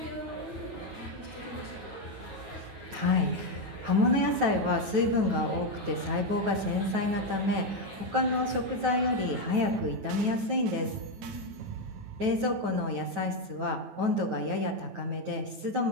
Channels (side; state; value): left; late; 9.2 ms